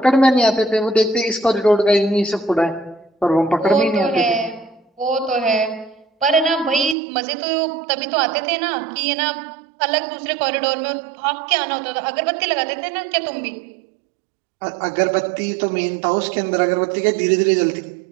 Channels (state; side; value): drops out; left; at 7.0 s